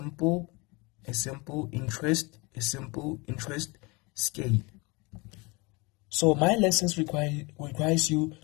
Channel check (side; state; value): right; quieter; 26.8 dB